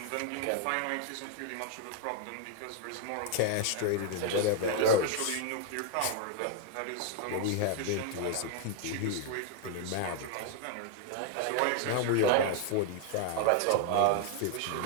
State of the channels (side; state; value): both; different; correlation 0.00